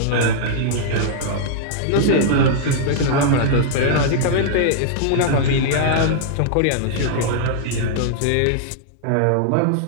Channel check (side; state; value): both; different; correlation -0.01